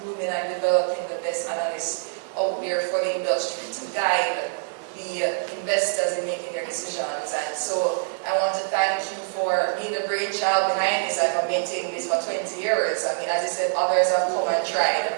grooming and developing the best analysts out there for the industry to guide the investors in making their decisions. And so I want to thank you for being the brainchild behind this and for maintaining this for 20 years. I mean, as you said, others have come and tried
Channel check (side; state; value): left; silent; 62 dB below the other